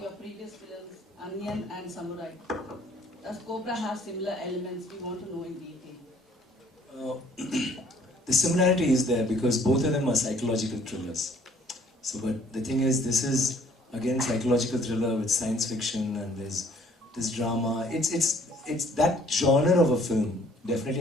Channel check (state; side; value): normal; both; correlation 0.59